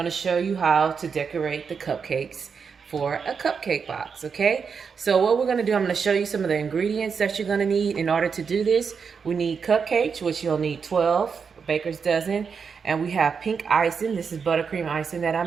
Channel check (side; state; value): left; quieter; 6.0 dB